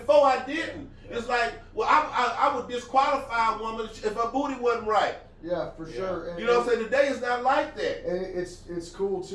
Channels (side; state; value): both; identical; correlation 1.00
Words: I didn't. Yeah. It's like, well, I would disqualify a woman if her booty wasn't right. Yeah, for sure. And, You know what I'm saying? Today is not like that. and it's cool